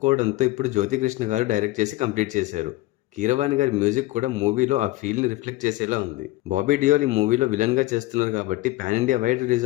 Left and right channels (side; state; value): right; quieter; 18.7 dB